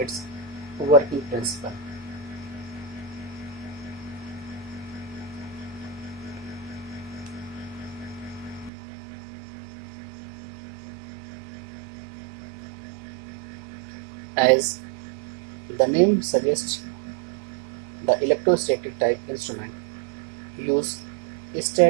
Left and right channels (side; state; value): left; drops out; at 8.7 s